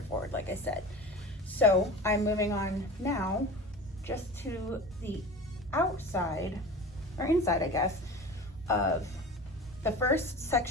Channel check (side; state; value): both; normal; correlation 0.35